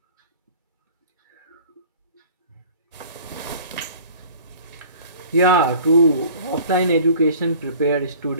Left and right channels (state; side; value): inverted; both; correlation -0.47